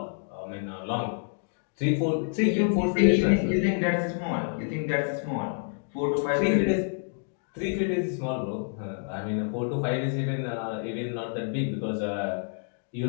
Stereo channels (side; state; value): right; silent; digital silence